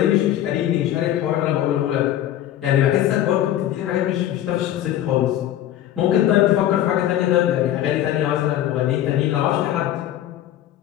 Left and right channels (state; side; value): quieter; right; 12.2 dB